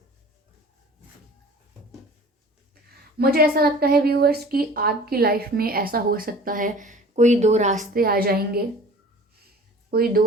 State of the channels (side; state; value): both; normal; correlation 0.45